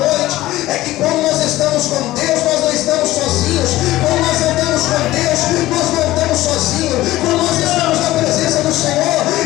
é que quando nós estamos com Deus, nós não estamos sozinhos. Quando nós andamos com Deus, nós não andamos sozinhos. Quando nós estamos na presença do Senhor,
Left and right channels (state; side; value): quieter; right; 16.6 dB